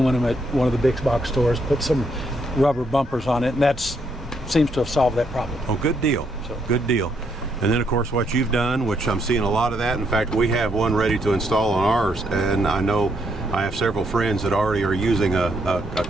at one of the big box stores, put some rubber bumpers on it, and that seems to have solved that problem. Oh, good deal. Good deal. And then, of course, what you've done, which I'm seeing a lot of that. In fact, we have one ready to install on ours, and I know I have several friends that already are using a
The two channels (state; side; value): normal; both; correlation 0.75